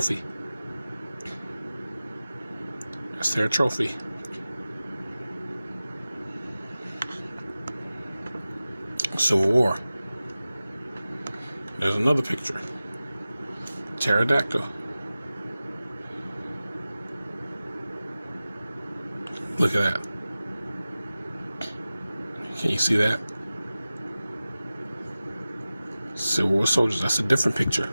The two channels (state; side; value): inverted; both; correlation -0.96